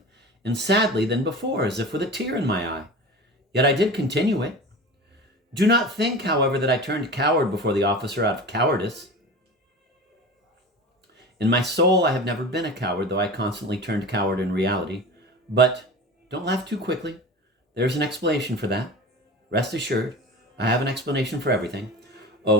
and sadly than before, as if with a tear in my eye. Yet I did continue it. Do not think, however, that I turned coward before the officer out of cowardice. In my soul, I have never been a coward, though I constantly turned coward in reality. But don't laugh too quickly. There's an explanation for that. Rest assured, I have an explanation for everything.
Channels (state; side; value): normal; both; correlation 0.33